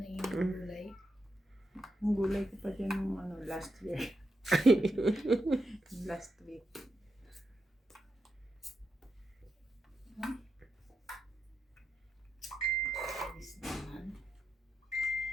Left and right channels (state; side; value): normal; both; correlation 0.85